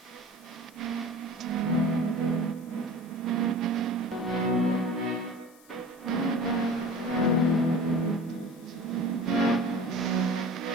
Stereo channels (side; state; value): left; noise; hiss, 26 dB below the sound